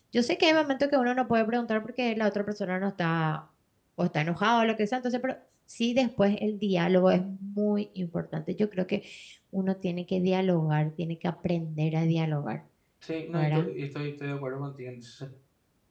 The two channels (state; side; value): identical; both; correlation 1.00